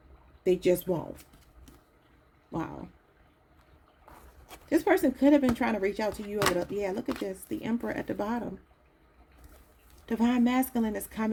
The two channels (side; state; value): both; identical; correlation 1.00